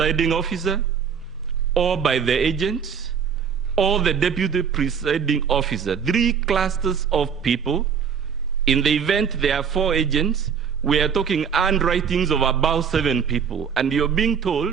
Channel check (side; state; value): left; quieter; 7.1 dB